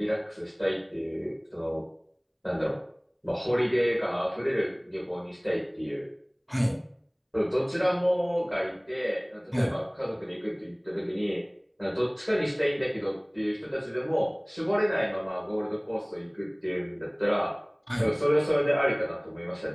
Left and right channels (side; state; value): both; identical; correlation 1.00